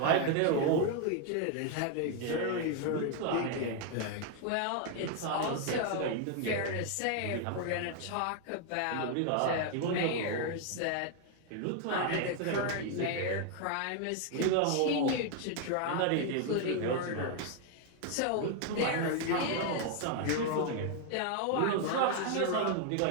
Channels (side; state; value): both; different; correlation 0.00